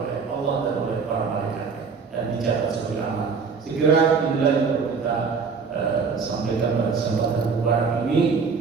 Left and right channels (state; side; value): quieter; left; 5.3 dB